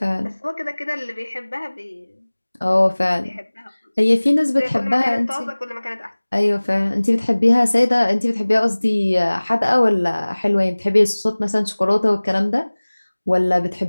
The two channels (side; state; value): both; inverted; correlation -1.00